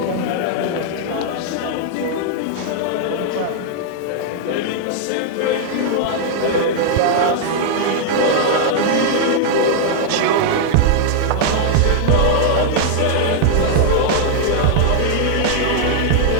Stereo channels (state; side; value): different; both; correlation 0.00